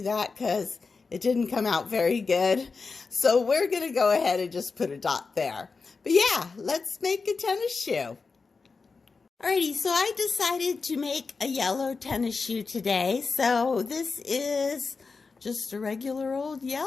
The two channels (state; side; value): quieter; right; 4.5 dB